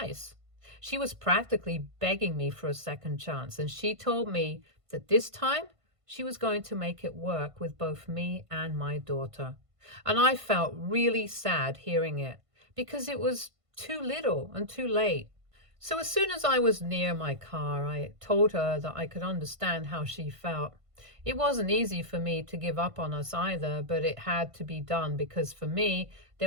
She was practically begging me for a second chance, and she told me that this time she was going to make it work with both me and my daughter. And I felt really sad hearing it because it was too little and too late. So as soon as I was near my car, I told her that I could understand how she felt. It wasn't easy for me to give up on us either, but it had to be done because for me,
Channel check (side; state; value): left; late; 1.5 ms